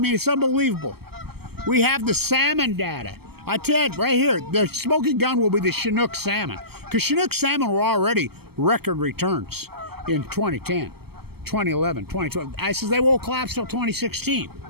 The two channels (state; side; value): late; left; 0.96 ms